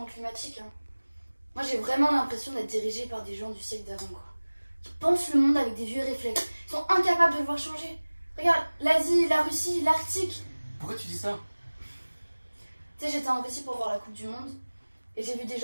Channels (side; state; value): both; inverted; correlation -1.00